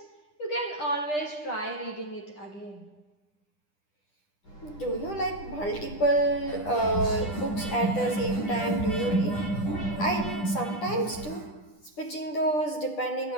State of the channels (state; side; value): late; right; 10 ms